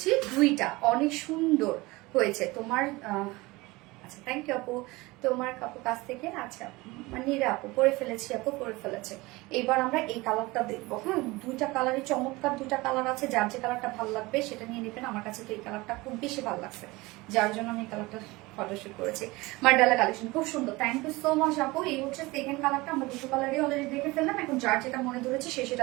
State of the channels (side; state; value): left; quieter; 22.0 dB